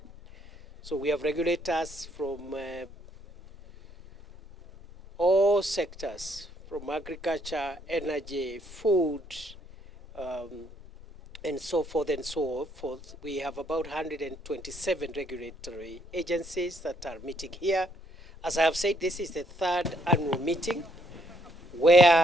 So we have regulators from all sectors, from agriculture, energy, food, and so forth and so forth. We have about 127 regulatory agencies that are meeting here. As I have said, this is the third annual meeting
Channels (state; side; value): normal; both; correlation 0.70